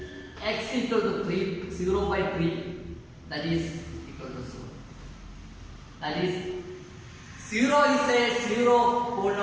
x equal to 3, 0 by 3. That is equal to 0. That is 0 is a zero of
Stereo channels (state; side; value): identical; both; correlation 1.00